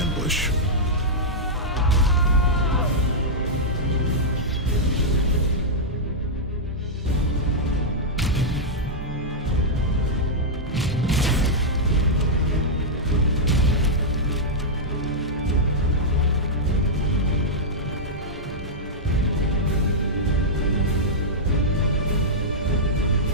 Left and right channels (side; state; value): both; normal; correlation -0.09